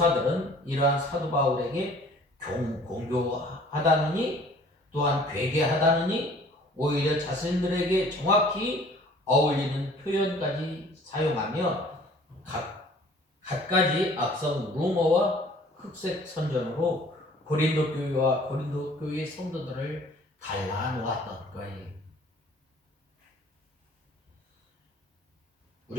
이러한 사도 바울에게 공교하다느니 또한 괴계하다느니 오히려 자신들에게 정확히 어울리는 표현까지 사용하며 갖가지 악성 루머와 흑색 선전으로 고린도 교회와 고린도 교회의 성도들을 갈라놓았던 거예요.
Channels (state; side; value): normal; both; correlation 0.52